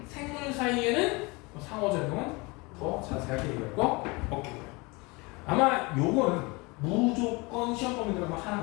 생물 사이에는 상호작용은 더 자세하게 얘기할 거 없겠고요. 아마 요거는 무조건 시험 범위 들어가면 하나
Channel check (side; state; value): right; quieter; 26.1 dB